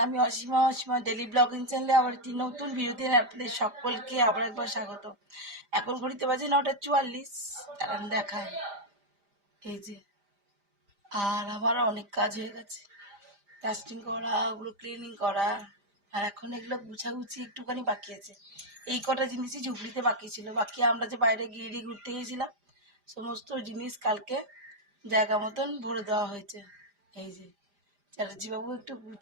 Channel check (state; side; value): late; left; 5.0 ms